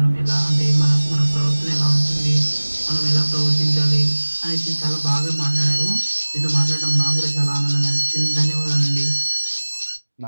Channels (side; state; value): both; inverted; correlation -1.00